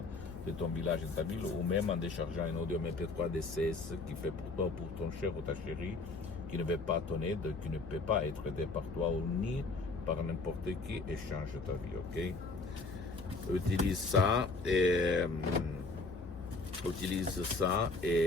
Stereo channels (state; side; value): quieter; right; 3.6 dB